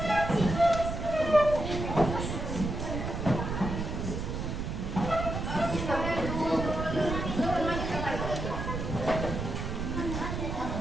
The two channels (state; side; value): noise; right; rumble, 4 dB below the sound